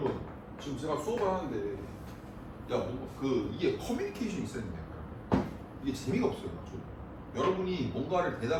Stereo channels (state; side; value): identical; both; correlation 1.00